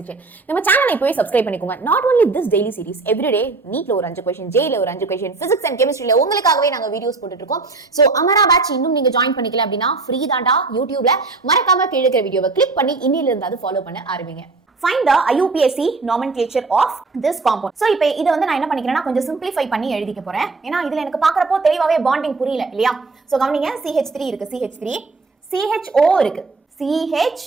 நம்ம சேனலை இப்போவே சப்ஸ்கிரைப் பண்ணிக்கோங்க. Not only this daily series, every day நீட்ல ஒரு 5 क्वेश्चन, ஜேல ஒரு 5 क्वेश्चन, பிசிக்ஸ் அண்ட் கெமிஸ்ட்ரியில உங்களுக்காகவே நாங்க வீடியோஸ் போட்டுட்டு இருக்கோம். சோ அமரா பேட்ச் இன்னும் நீங்க ஜாயின் பண்ணிக்கல அப்படினா ஃப்ரீ தான்டா யூடியூப்ல. மறக்காம கீழ இருக்கிற வீடியோவை கிளிக் பண்ணி இன்னில இருந்து அது ஃபாலோ பண்ண ஆரம்பிங்க. Find the IUPAC nomenclature of this compound. So இப்போ இத வந்து நான் என்ன பண்ணிக்கிறேன்னா கொஞ்சம் சிம்பிளிஃபை பண்ணி எழுதிக்க போறேன். ஏன்னா இதுல எனக்கு பார்க்கறப்போ தெளிவாவே பாண்டிங் புரியல இல்லையா? சோ கவனிங்க, CH3 இருக்கு, CH3, CHO இருக்கு,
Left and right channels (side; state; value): left; quieter; 3.8 dB